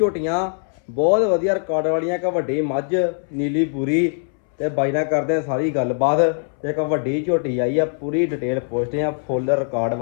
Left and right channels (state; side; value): silent; right; 65 dB below the other